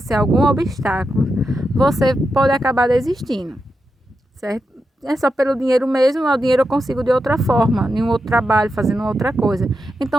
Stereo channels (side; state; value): both; normal; correlation 0.87